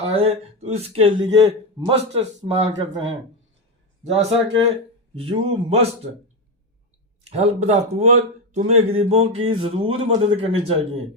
तो इसके लिए मस्ट इस्तेमाल करते हैं। जैसा कि you must help the poor, तुम्हें गरीबों की जरूर मदद करनी चाहिए।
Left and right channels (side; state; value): both; normal; correlation 0.12